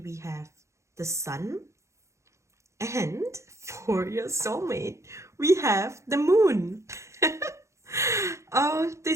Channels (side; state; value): left; late; 0.14 ms